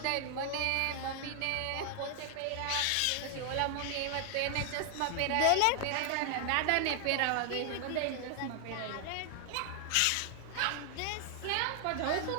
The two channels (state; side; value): different; both; correlation 0.00